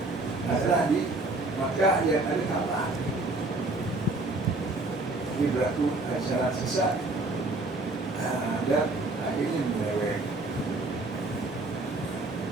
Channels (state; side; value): quieter; left; 3.0 dB